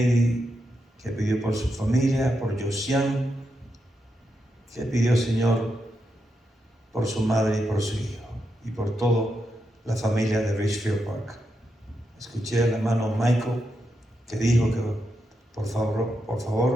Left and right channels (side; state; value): both; normal; correlation 0.85